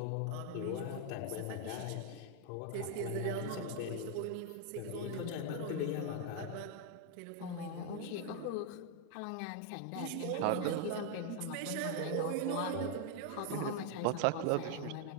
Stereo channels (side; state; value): both; different; correlation 0.00